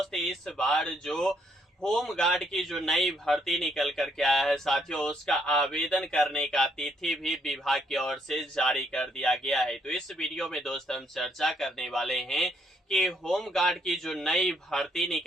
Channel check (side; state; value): both; normal; correlation 0.71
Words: इस बार जो होम गार्ड की जो नई भर्ती निकल कर के आया है साथियों, उसका आवेदन करने का तिथि भी विभाग की ओर से जारी कर दिया गया है। तो इस वीडियो में दोस्त हम चर्चा करने वाले हैं कि होम गार्ड की जो नई भर्ती